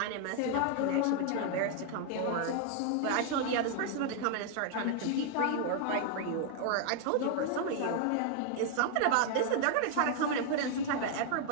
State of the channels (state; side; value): different; both; correlation 0.00